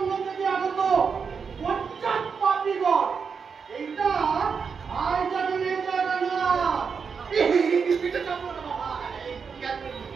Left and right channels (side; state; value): left; quieter; 5.9 dB